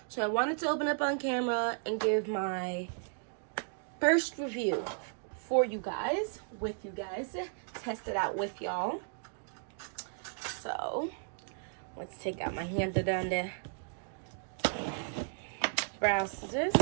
So I wanted to open up on camera and give my first review for you guys, test it out with y'all. So let's take out my handy dandy brow scissors.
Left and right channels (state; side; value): silent; left; digital silence